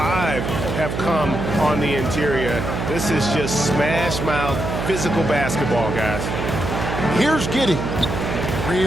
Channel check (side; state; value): right; noise; hum, 3 dB below the sound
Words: have come on the interior. This is just smash mouth physical basketball, guys. Here's Giddey.